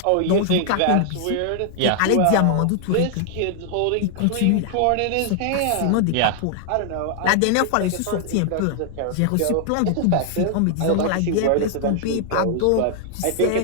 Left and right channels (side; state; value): both; different; correlation 0.00